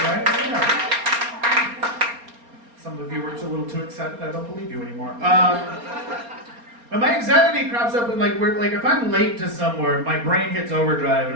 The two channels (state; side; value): late; left; 4.3 ms